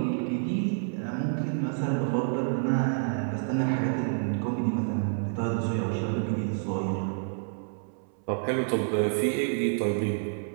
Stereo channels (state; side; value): silent; left; 59 dB below the other